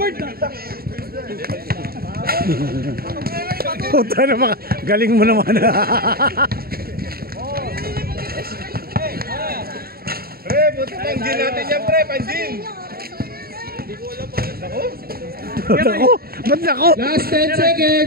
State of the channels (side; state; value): left; late; 0.44 ms